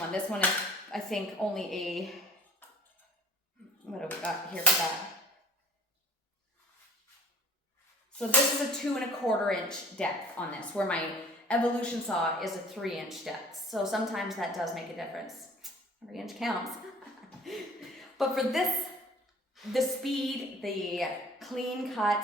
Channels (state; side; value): normal; both; correlation 0.49